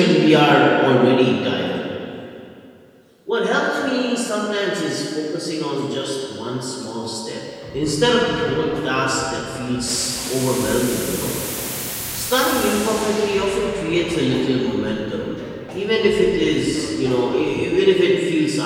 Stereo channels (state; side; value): identical; both; correlation 1.00